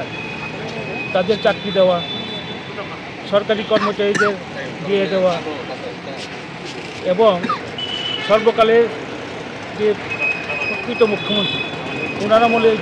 তাদের চাকরি দেওয়া, সরকারি কর্মচারীদের দিয়ে দেওয়া এবং সর্বকালের যে প্রকৃত মুখ্যমন্ত্রী ওনার আমলে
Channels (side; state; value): both; identical; correlation 1.00